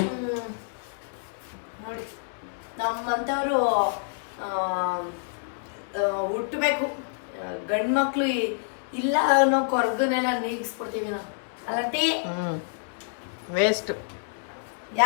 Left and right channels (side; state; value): right; silent; 60 dB below the other